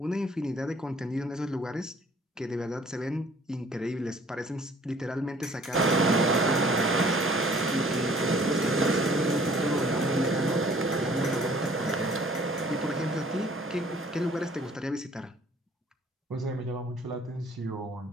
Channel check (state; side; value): normal; both; correlation 0.56